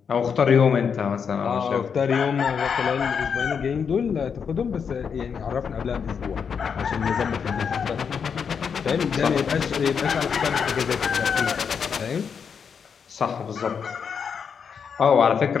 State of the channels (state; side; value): quieter; right; 6.6 dB